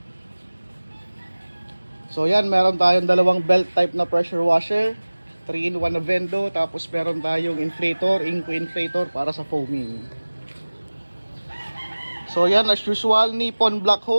So yan, meron tayong dalawang belt type na pressure washer, 3-in-1 na Vendo, tapos meron tayong inflator, Inco inflator para sa foaming. So yan, as usual, Nippon black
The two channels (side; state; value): both; inverted; correlation -1.00